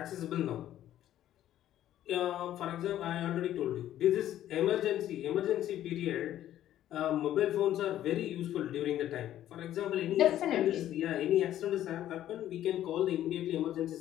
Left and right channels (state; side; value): quieter; right; 12.3 dB